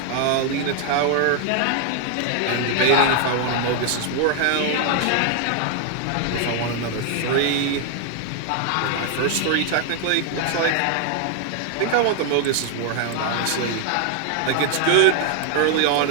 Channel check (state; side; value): different; both; correlation 0.00